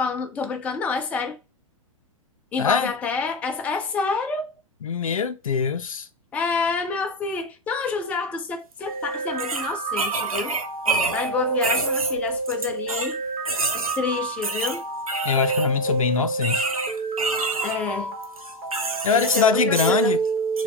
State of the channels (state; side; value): normal; both; correlation 0.11